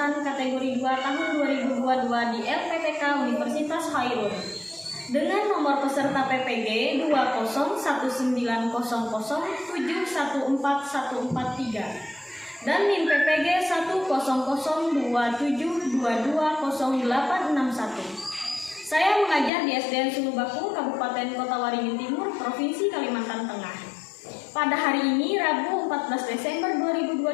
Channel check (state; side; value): drops out; right; at 19.5 s